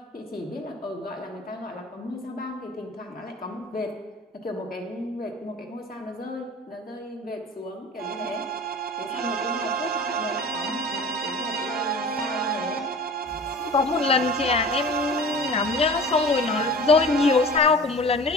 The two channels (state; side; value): normal; both; correlation 0.40